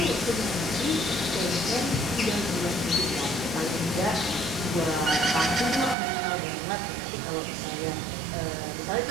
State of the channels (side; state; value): left; drops out; at 6.0 s